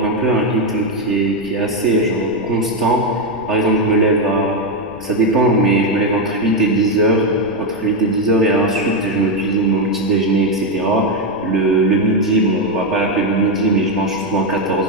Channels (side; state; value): left; noise; rumble, 23 dB below the sound